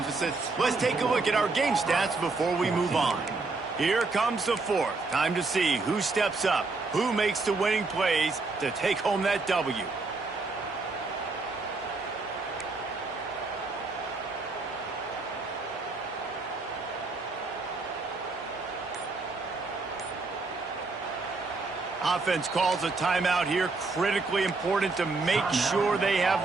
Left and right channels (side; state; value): left; quieter; 3.7 dB